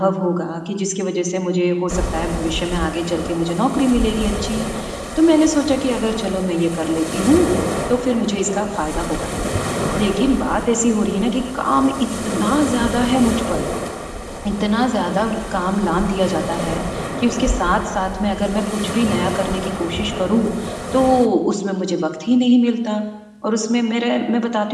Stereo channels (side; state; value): both; identical; correlation 1.00